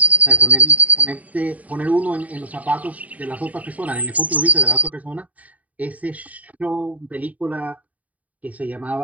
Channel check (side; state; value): left; late; 0.071 ms